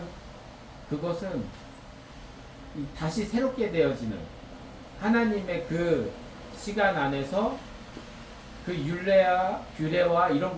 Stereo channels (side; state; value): both; identical; correlation 1.00